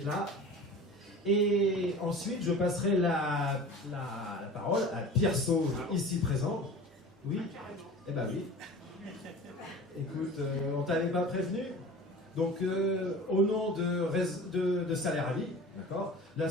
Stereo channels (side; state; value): both; normal; correlation 0.38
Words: là. Et ensuite, je passerai la parole à Pierre Sauve, ici présent. Oui? Eh ben oui. Écoute, on t'avait pas prévenu. Donc, au nom de Salaire à Vie, d'accord,